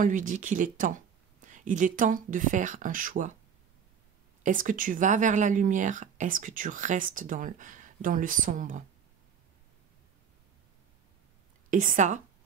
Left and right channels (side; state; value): left; quieter; 7.4 dB